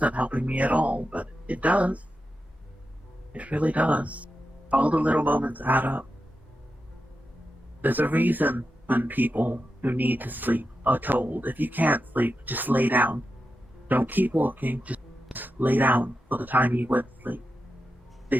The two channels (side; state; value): both; normal; correlation 0.89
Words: helping me at all, but it does. It really does. All the little moments add up. There's a reason when people who need to sleep are told, if you can't sleep, just lay down. Don't keep walking, just lay down for the time you would sleep. They